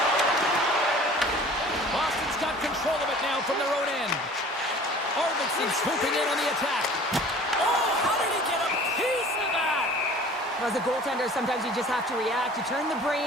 Boston's got control of it now from their own end. Arvidsson swooping in on the attack. Oh, how did he get a piece of that? As a goaltender, sometimes you just have to react. You turn the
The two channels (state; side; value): normal; both; correlation 0.46